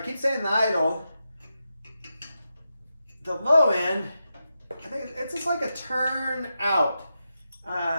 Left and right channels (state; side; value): inverted; both; correlation -0.88